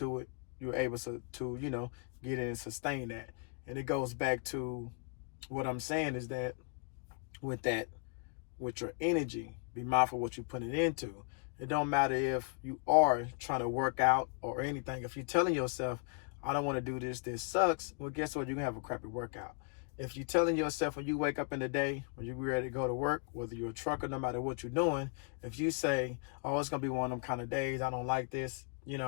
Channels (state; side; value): quieter; right; 37.5 dB